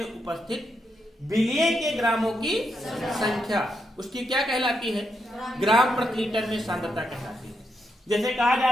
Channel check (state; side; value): normal; both; correlation 0.81